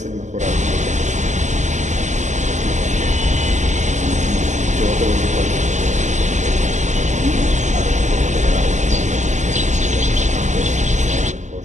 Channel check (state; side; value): late; left; 0.34 ms